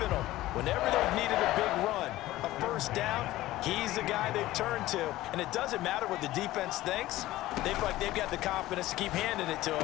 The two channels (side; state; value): right; quieter; 16.4 dB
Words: them. Whenever they've needed a big run, a first down, he's the guy they've turned to. And it doesn't matter what the defense thinks. They feel like they've got the confidence to keep handing it to